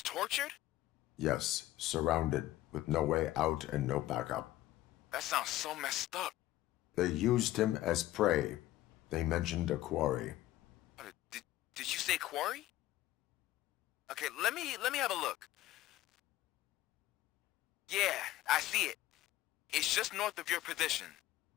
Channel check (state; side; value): quieter; right; 15.4 dB